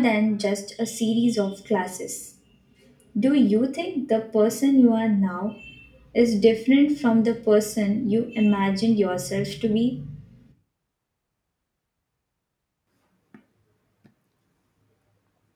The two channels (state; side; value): identical; both; correlation 1.00